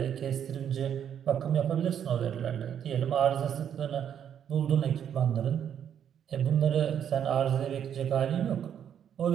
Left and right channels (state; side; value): quieter; left; 9.0 dB